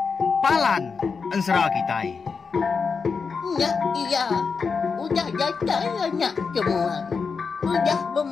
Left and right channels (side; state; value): right; quieter; 5.2 dB